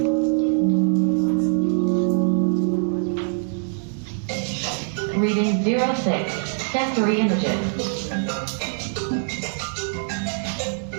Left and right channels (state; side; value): silent; left; digital silence